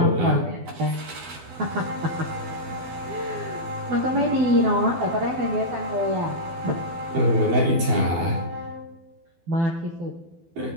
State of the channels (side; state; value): left; late; 12 ms